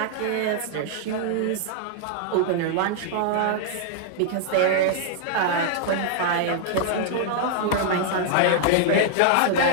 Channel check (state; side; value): different; both; correlation -0.01